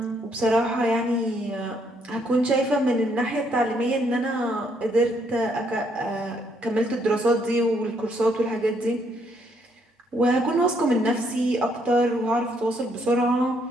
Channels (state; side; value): normal; both; correlation 0.71